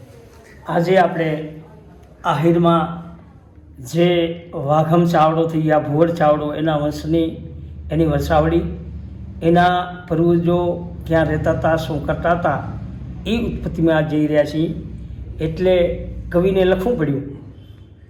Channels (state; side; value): identical; both; correlation 1.00